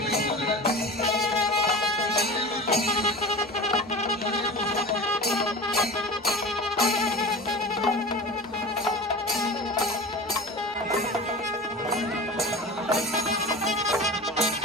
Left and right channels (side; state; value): both; normal; correlation 0.33